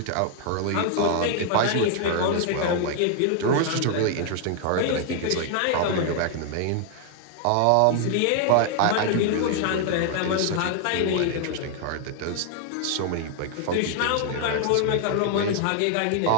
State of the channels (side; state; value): both; different; correlation 0.00